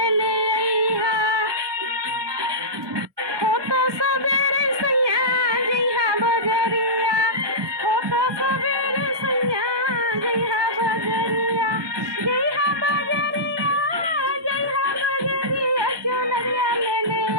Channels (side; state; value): left; late; 1.2 ms